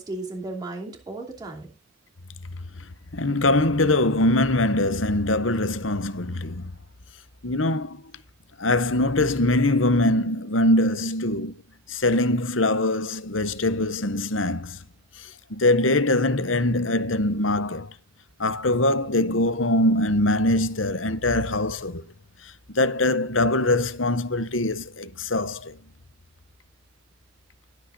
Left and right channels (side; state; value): both; normal; correlation 0.11